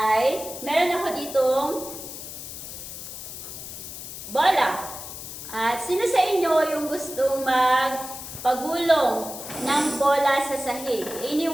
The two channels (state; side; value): noise; left; hiss, 10 dB below the sound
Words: meron ako ditong bola. At sino sa inyo yung gustong magpagulong ng bola sa sahig?